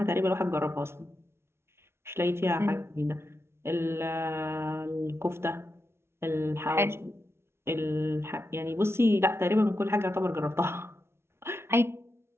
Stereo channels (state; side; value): late; left; 0.12 ms